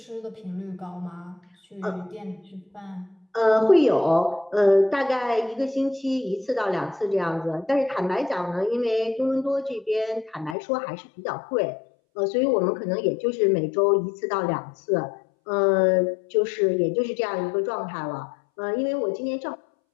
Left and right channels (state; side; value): drops out; right; at 10.6 s